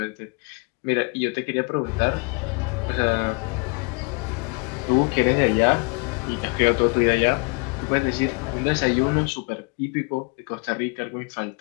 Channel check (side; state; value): right; quieter; 32.4 dB